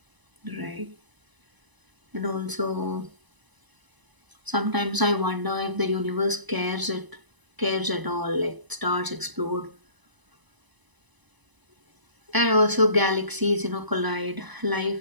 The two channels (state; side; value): late; left; 1.0 ms